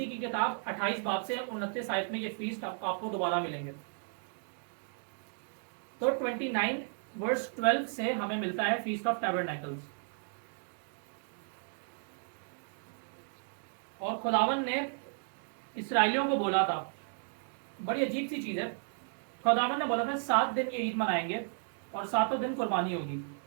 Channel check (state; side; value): silent; left; 55 dB below the other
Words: की किताब 28 बाब से 29 आयत में ये फीस आपको दोबारा मिलेंगे। तो 29 वर्स 12 से हमें मिलता है फीस्ट ऑफ टैबरनेकल्स। और खुदावन ने इसराइलियों को बोला था, बड़ी अजीब सी चीज है, खुदावन ने बोला था 7 दिन की ईद मनाएंगे और 7वें दिन कुर्बानी होगी।